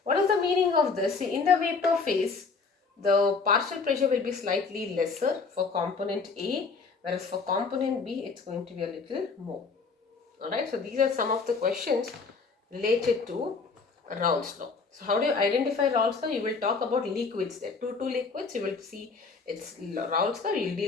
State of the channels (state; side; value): quieter; right; 4.6 dB